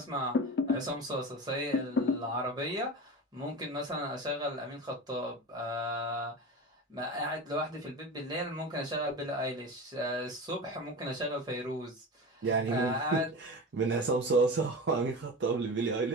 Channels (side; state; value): both; normal; correlation 0.29